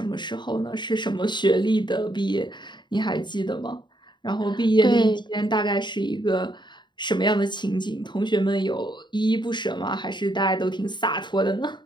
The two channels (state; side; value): late; right; 0.22 ms